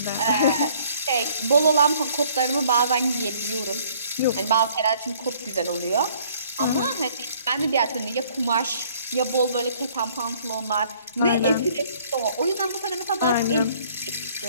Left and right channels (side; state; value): both; inverted; correlation -0.59